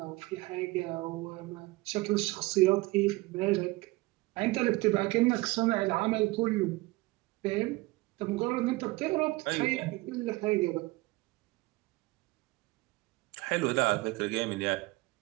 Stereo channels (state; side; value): quieter; left; 21.5 dB